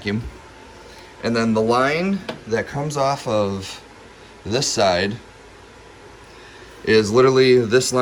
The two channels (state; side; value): identical; both; correlation 1.00